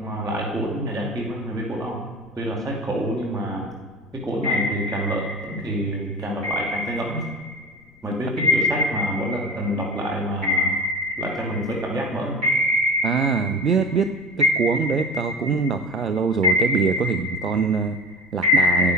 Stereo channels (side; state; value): left; noise; rumble, 28 dB below the sound